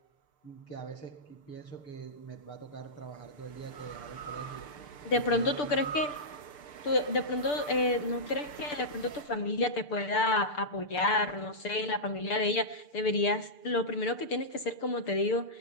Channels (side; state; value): right; late; 6.8 ms